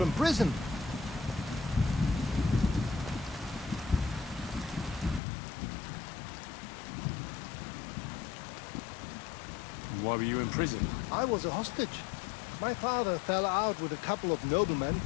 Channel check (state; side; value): drops out; right; at 5.2 s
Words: prison. Why were you in prison? I was a hostage. My father fell out with a couple of noblemen